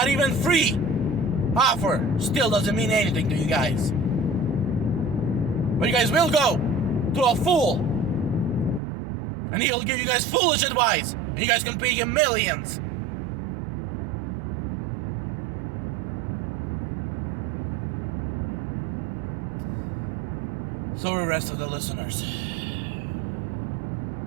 even free offer still doesn't mean anything to you guys. But you guys will go to a fool and he'll give you guys foolish advice and you guys can pay him millions. So are the rest of the listeners.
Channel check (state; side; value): drops out; left; at 8.8 s